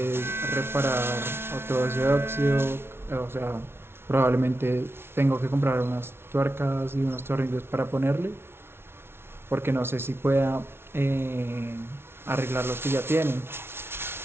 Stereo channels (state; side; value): late; left; 0.12 ms